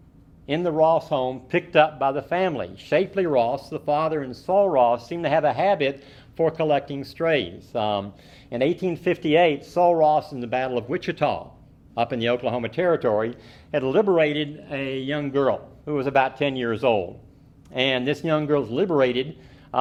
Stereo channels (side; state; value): both; identical; correlation 1.00